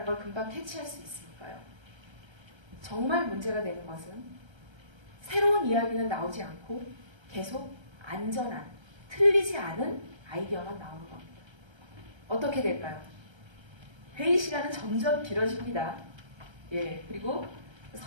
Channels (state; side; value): late; left; 1.3 ms